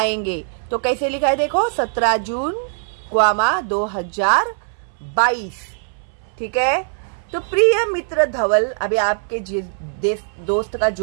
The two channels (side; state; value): left; silent; 61 dB below the other